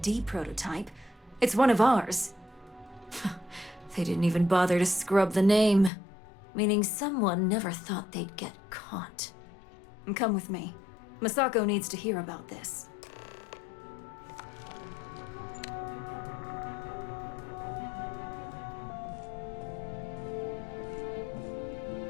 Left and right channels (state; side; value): drops out; right; at 5.9 s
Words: prototype. It's one of ours. They didn't even bother to scrub the name, meaning someone never thought they'd get caught. Come with me. Masako needs to hear about this.